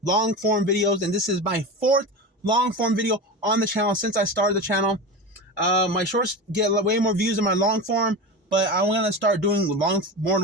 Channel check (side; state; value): both; normal; correlation 0.25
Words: long form videos, and this is my 4th long form video on the channel since I started the channel. My shorts get way more views than my long form, but I'm gonna start doing more